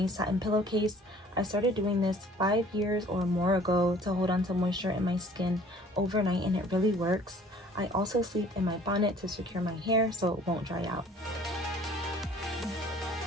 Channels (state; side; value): normal; both; correlation 0.53